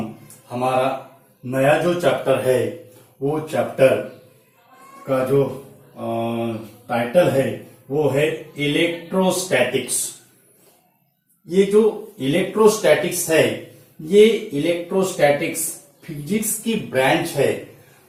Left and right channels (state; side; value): identical; both; correlation 1.00